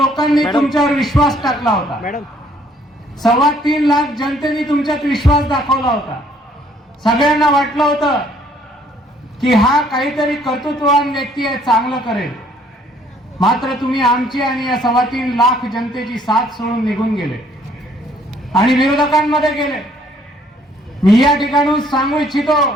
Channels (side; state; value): both; normal; correlation 0.63